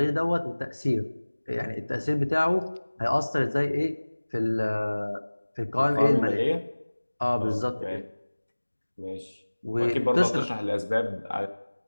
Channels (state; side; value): inverted; both; correlation -1.00